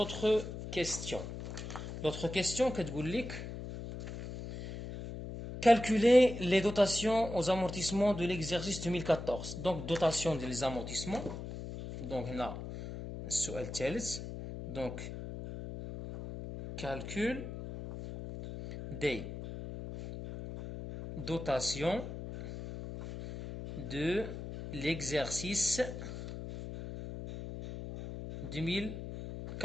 كيستيون. لوطخ كيستيون كتقول لك calculer les dotations aux amortissements de l'exercice 2014. Donc dotation des amortissements. Donc هنا السؤال الثالث. Donc calcul des dotations de l'exercice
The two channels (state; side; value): noise; left; hum, 8 dB below the sound